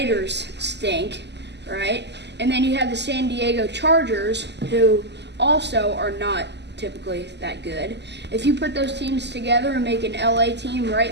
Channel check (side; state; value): left; late; 0.50 ms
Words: stink, right? And then you have the San Diego Chargers, who also are not typically that good. If you put those teams together and make an LA team right